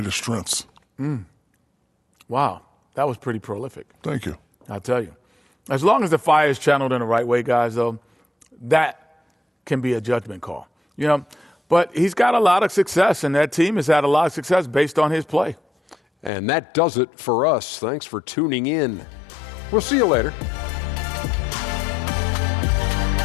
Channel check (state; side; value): drops out; right; at 16.3 s